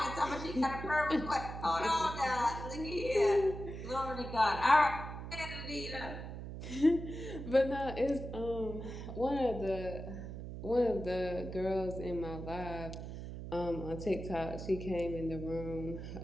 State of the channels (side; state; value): right; noise; hum, 8 dB below the sound